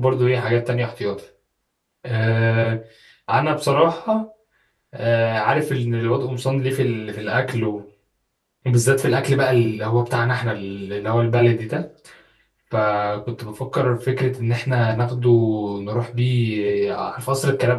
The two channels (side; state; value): both; identical; correlation 1.00